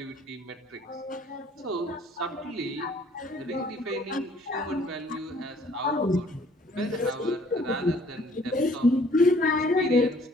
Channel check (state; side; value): normal; both; correlation 0.58